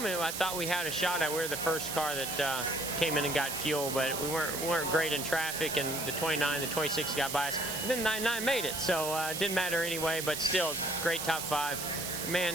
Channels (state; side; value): noise; right; hiss, 4 dB below the sound